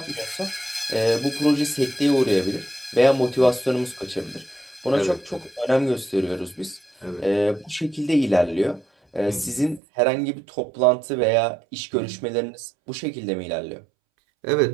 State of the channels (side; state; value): left; drops out; at 9.8 s